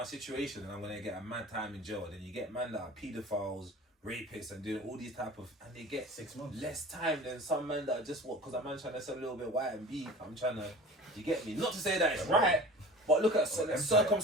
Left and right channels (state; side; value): normal; both; correlation 0.41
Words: situation and I'm going to get a mad time in jail. And then you get man that are paedophiles, rapists and doing all these type of, and they get 6 months. less time than some men that are just because a man trying to sell a little bit white and beef. I'm trying to, you get me? Not to say that it's right, but look at